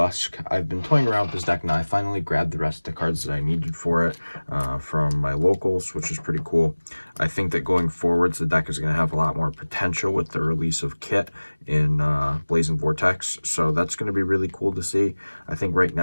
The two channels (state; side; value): inverted; both; correlation -1.00